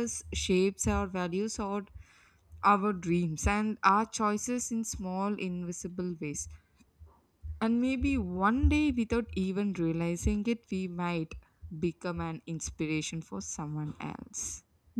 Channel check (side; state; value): both; identical; correlation 1.00